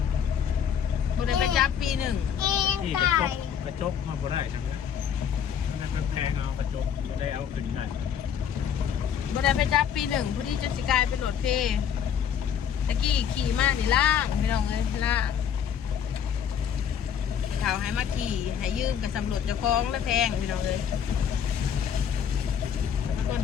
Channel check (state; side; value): quieter; right; 8.3 dB